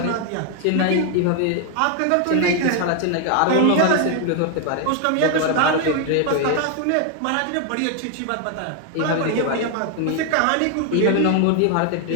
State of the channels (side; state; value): both; different; correlation 0.00